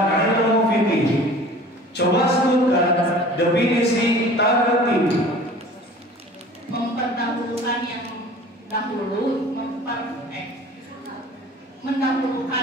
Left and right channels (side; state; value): both; normal; correlation 0.44